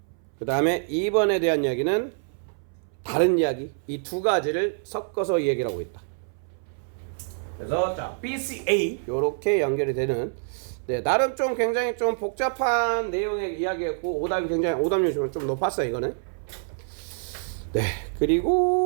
그 다음에 2번에 대한 이야기는 다른 이야기, 이 두 가지를 섞어서 얘기를 하고 있다. 그래서 자 B, C, A 요렇게 연결이 되는 나름 좀 굉장히 좀 복잡한 내용의 이야기였고 오답률이 좀 높았어요 이거는.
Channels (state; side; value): silent; left; 61 dB below the other